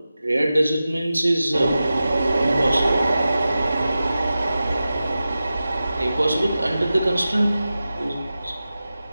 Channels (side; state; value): both; inverted; correlation -0.94